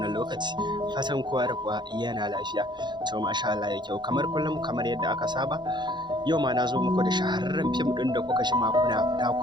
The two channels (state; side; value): late; left; 0.22 ms